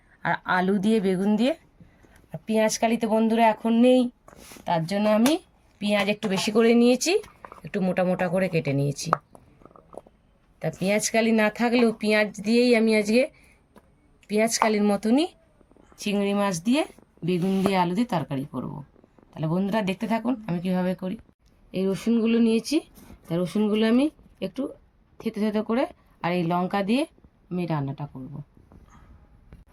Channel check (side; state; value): both; identical; correlation 1.00